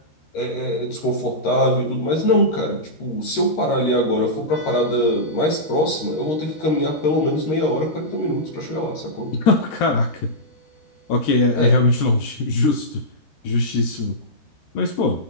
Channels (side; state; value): right; late; 13 ms